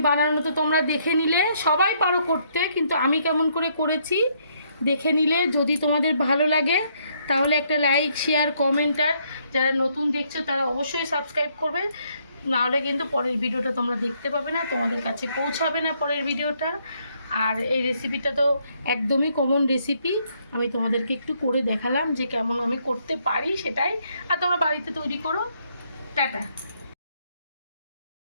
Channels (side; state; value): both; inverted; correlation -0.71